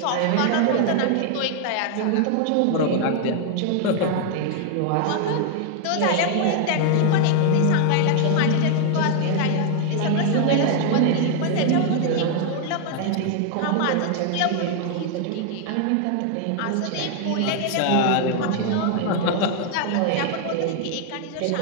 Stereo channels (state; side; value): different; both; correlation 0.00